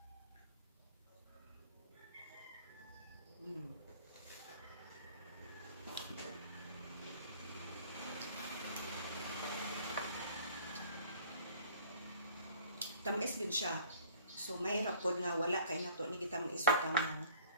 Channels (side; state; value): both; inverted; correlation -0.53